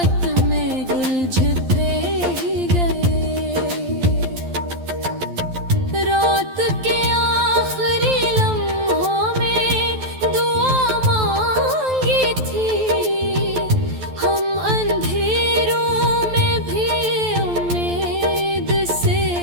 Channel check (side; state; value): left; late; 12 ms